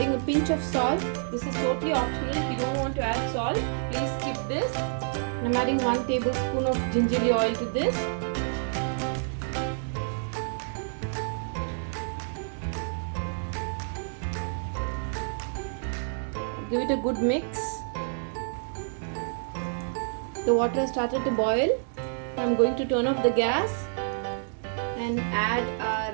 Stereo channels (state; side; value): silent; left; 59 dB below the other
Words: a pinch of salt. This is totally optional. If you don't want to add salt, please skip this. I am adding 1 tablespoon of gingerly oil to this. Give it a good mix. The water has started to boil. I am going to turn off the gas and add